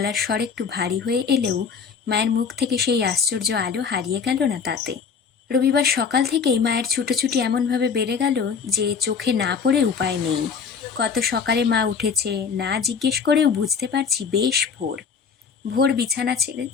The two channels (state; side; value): quieter; right; 6.1 dB